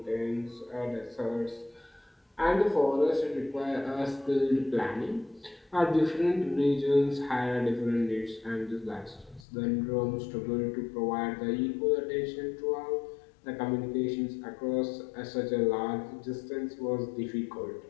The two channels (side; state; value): right; drops out; at 9.5 s